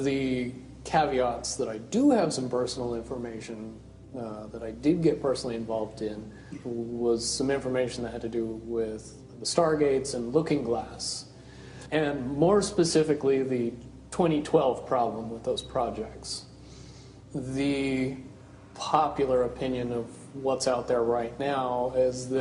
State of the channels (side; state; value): both; identical; correlation 1.00